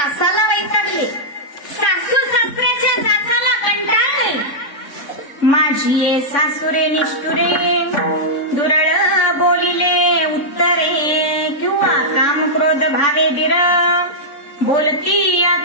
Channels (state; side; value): late; right; 3.5 ms